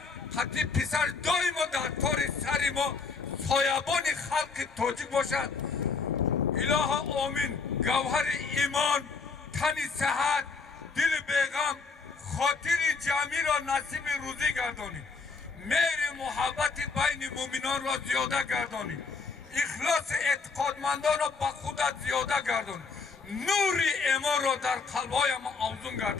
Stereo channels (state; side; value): quieter; right; 4.7 dB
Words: қати писар доимо дар тори сари мо соябони халқи тоҷик бошад. Илоҳа омин. Гавҳари имон, тани сиҳат, дили беғам, хотири ҷамъиро насиби рӯзӣ гардонид. мehri muhabbati bayni mu'minon را زیاده گردانید. اخلاص اعتقادمندان را با خودت زیاده گردان. نور ایمان را در قلب‌های ما افزون